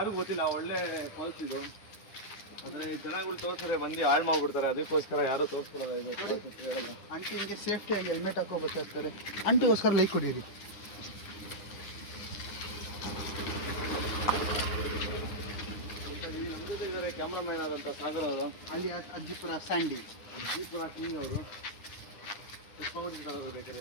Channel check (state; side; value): late; right; 9.8 ms